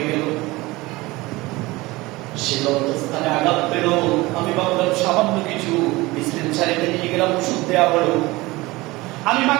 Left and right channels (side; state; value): left; quieter; 20.9 dB